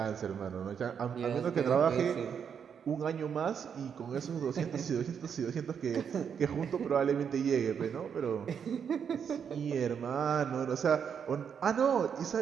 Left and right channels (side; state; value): left; quieter; 7.4 dB